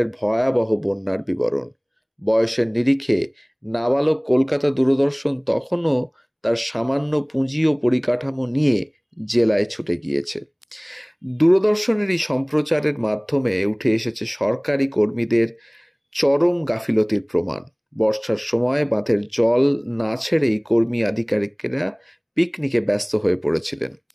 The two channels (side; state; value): both; identical; correlation 1.00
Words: ভয়াবহ বন্যার বিবরণ। বয়সের নিরিখে নাবালক কলকাতা দূরদর্শন তখনও তার সামান্য পুঁজি ও পরিকাঠামো নিয়ে জেলায় ছুটে গিয়েছে। দূরদর্শনের এই সম্প্রচারের মাধ্যমে উঠে এসেছে সরকারি কর্মীদের চরম গাফিলতির প্রমাণ। বর্ষার সময় বাঁধের জল না ছেড়েই কর্মী আধিকারিকেরা পিকনিকে ব্যস্ত হয়ে পড়েছিলেন,